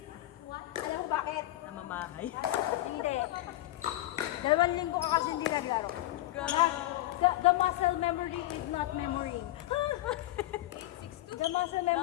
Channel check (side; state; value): right; quieter; 16.3 dB